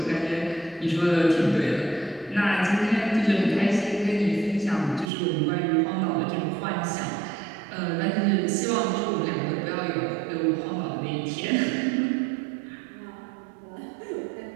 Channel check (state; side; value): drops out; left; at 5.1 s